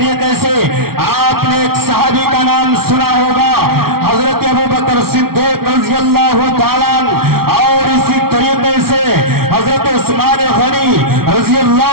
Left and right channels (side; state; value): left; late; 0.94 ms